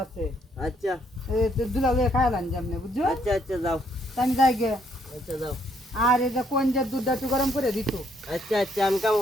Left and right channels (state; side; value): normal; both; correlation 0.70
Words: আছে আচ্ছা দুলা লয়ে খাইলাম যেমনে বুঝছো আচ্ছা আচ্ছা যাও আমি যাই গে আচ্ছা যাও আর এই যে কোন যে দুধটা একটু গরম করে দিত আচ্ছা আচ্ছা আমি কাম